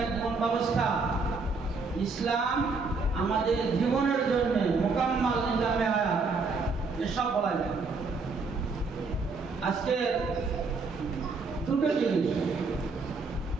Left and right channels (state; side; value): quieter; left; 4.2 dB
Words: এক জীবন ব্যবস্থা, ইসলাম আমাদের জীবনের জন্য মোকাম্মাল নিজামে হায়াত, এসব বলা যায়। আজকে দুটো জিনিস,